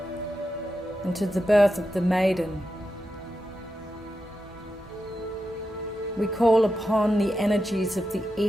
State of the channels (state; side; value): normal; both; correlation 0.88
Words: and to the birth of the maiden. We call upon the energies of the